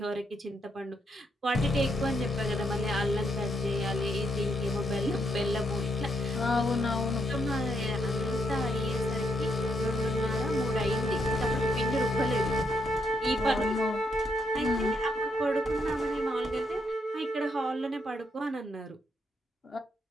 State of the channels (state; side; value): normal; both; correlation 0.77